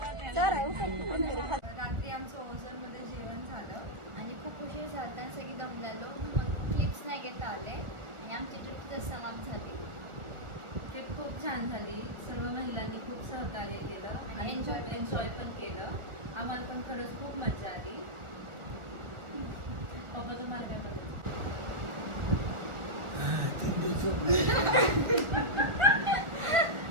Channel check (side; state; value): left; late; 1.4 ms